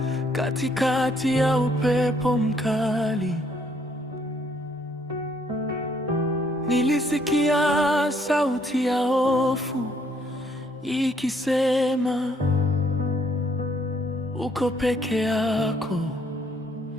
katikati ya upepo mkali. Nilisikia sauti ya hofu ikisema, uko peke yako.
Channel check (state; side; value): normal; both; correlation 0.67